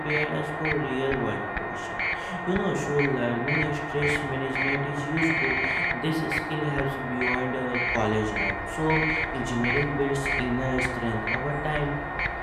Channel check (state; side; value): identical; both; correlation 1.00